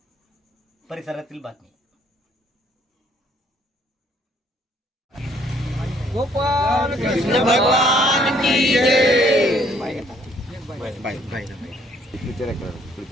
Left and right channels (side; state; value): both; normal; correlation 0.64